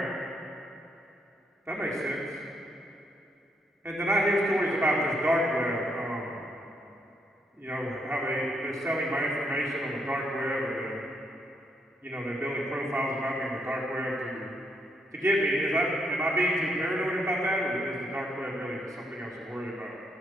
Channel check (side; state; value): both; normal; correlation 0.76